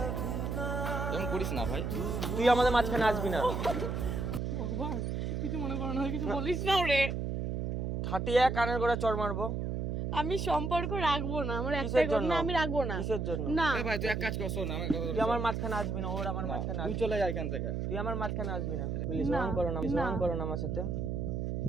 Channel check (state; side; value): noise; right; hum, 1 dB below the sound